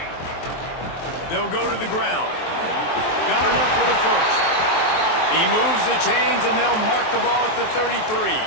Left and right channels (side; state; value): right; late; 23 ms